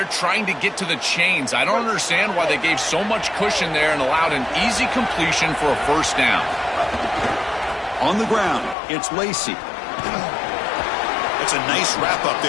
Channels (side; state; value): right; drops out; at 8.8 s